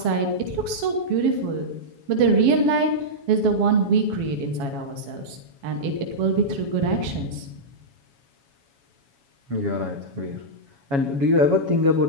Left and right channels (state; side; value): late; left; 7.2 ms